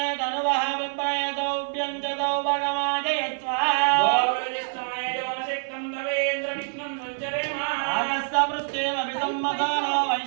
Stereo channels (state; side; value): silent; left; 55 dB below the other